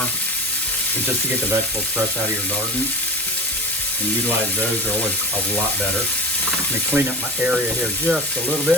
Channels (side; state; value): both; normal; correlation 0.32